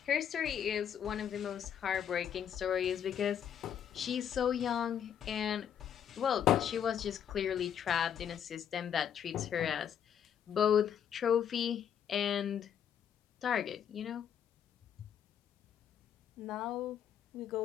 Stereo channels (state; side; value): quieter; right; 8.8 dB